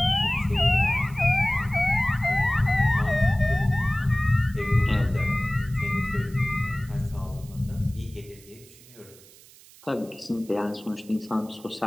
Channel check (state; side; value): noise; right; hiss, 23 dB below the sound